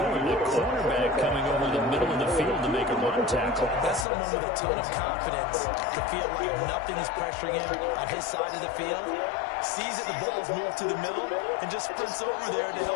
When the cornerback coming over the middle of the field to make a run tackle. That's someone with a ton of confidence to feel like nothing is pressuring him on his side of the field. Sees that the ball's moved to the middle and just sprints over there to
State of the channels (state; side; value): drops out; right; at 4.0 s